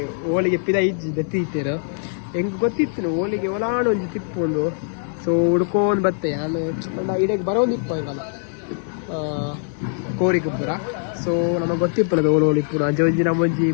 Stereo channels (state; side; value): silent; right; digital silence